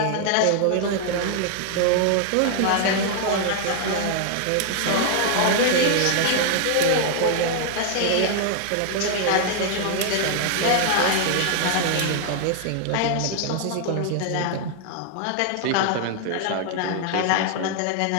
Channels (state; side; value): different; both; correlation 0.00